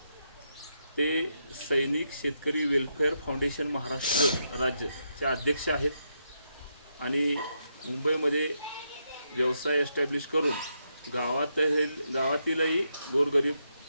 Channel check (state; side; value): inverted; both; correlation -0.81